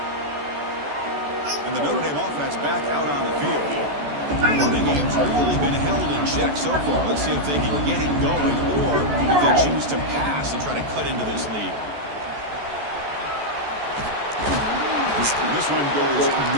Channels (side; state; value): left; late; 14 ms